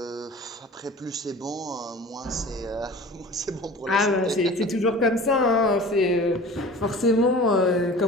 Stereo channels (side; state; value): both; normal; correlation 0.41